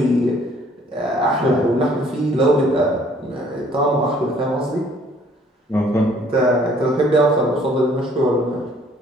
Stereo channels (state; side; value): normal; both; correlation 0.59